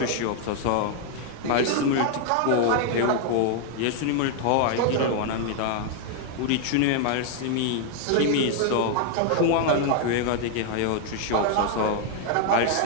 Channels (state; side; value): different; both; correlation 0.00